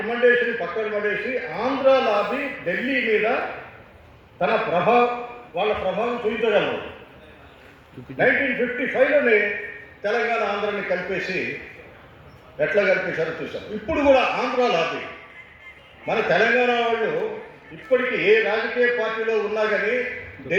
పక్కన పడేసి ఆంధ్ర లాబీ ఢిల్లీ మీద తన వాళ్ళ ప్రభావం చూపించగలరు. 1955లోనే తెలంగాణ ఆంధ్రాని కలిపేసి ఎట్లా కలిపేశారో చూసాం. ఇప్పుడు కూడా ఆంధ్ర లాబీ మన తెలంగాణ వాళ్ళు ఇప్పటికీ ఏ రాజకీయ పార్టీలో ఉన్నా కానీ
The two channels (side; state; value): both; identical; correlation 1.00